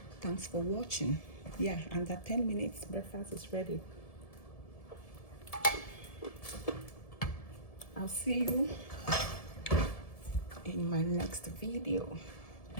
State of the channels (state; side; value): late; right; 1.7 ms